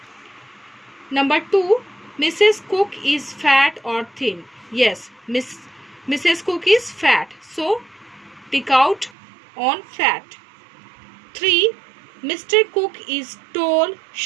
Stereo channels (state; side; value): drops out; left; at 9.2 s